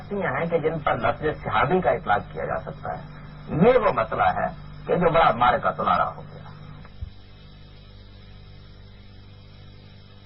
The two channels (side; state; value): both; identical; correlation 1.00